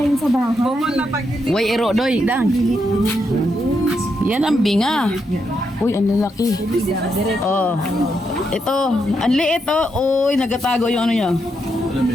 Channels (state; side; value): normal; both; correlation 0.81